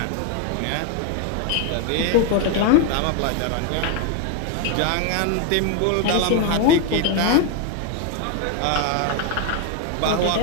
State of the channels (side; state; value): both; different; correlation 0.01